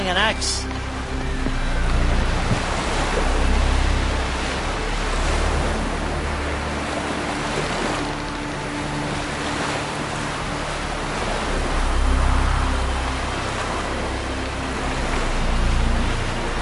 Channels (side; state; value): both; identical; correlation 1.00